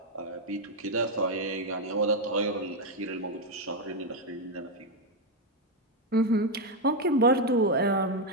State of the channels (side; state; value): both; normal; correlation 0.04